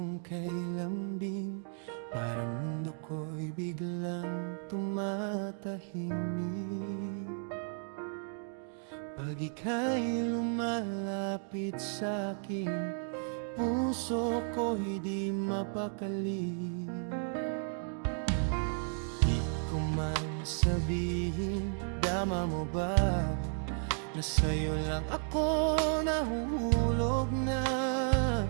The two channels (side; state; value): left; silent; 55 dB below the other